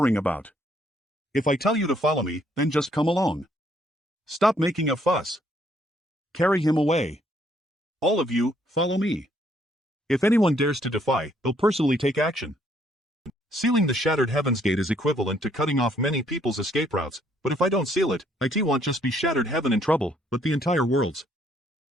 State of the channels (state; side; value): normal; both; correlation 0.68